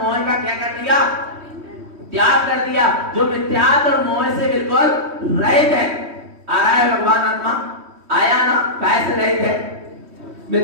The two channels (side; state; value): left; late; 3.2 ms